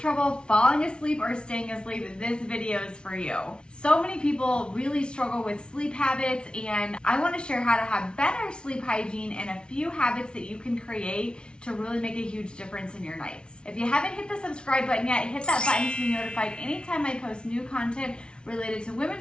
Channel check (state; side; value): late; right; 0.056 ms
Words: falling asleep or staying asleep, this video is for you. So many people really struggle with sleep habits, and I want to share how to have better sleep hygiene and a few habits that you can create to really make a huge difference in your nights. If you haven't hit the subscribe button yet, hit that button to be notified anytime I post new content related to